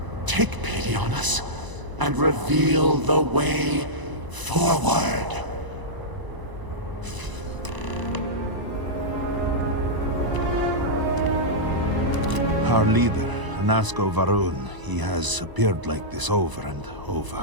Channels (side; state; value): left; late; 1.0 ms